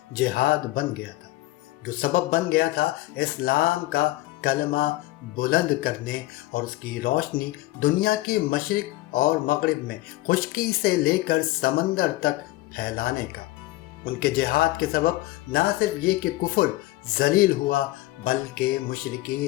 جہاد بن گیا تھا، جو سبب بن گیا تھا اسلام کا کلمہ بلند کرنے اور اس کی روشنی دنیا کے مشرق اور مغرب میں خشکی سے لے کر سمندر تک پھیلانے کا۔ ان کے جہاد کے سبب نہ صرف یہ کہ کفر ذلیل ہوا، بلکہ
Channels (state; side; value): quieter; right; 17.8 dB